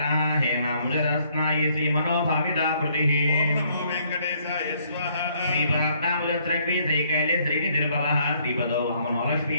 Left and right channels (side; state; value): both; inverted; correlation -0.67